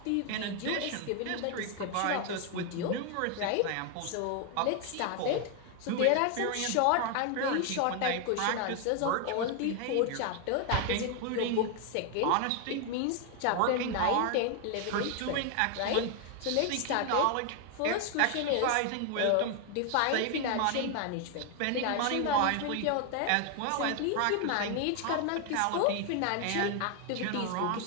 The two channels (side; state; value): both; different; correlation 0.01